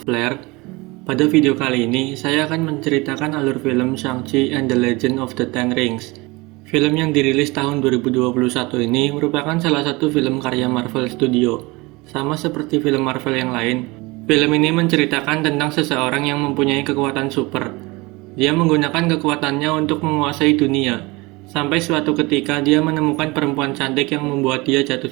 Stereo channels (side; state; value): left; quieter; 23.9 dB